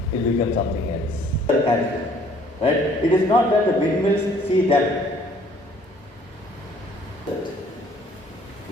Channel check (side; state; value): both; normal; correlation 0.58